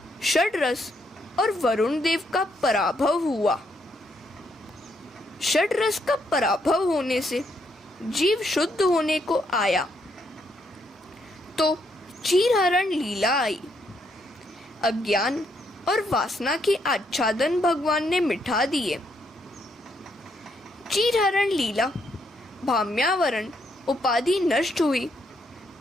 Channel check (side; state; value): both; normal; correlation 0.75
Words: षड रस और वरुण देव का पराभव हुआ। षड रस का पराभव होने से जीव शुद्ध होने को आया तो चीरहरण लीला आई। अज्ञान और वासना के आच्छादन भगवान ने मिटा दिए। चीरहरण लीला, भाम्यावरण उपाधि नष्ट हुई